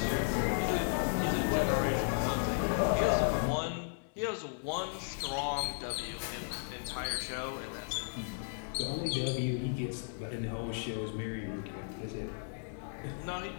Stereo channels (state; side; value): silent; right; digital silence